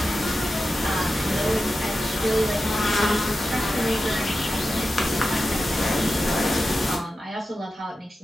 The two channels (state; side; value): normal; both; correlation 0.92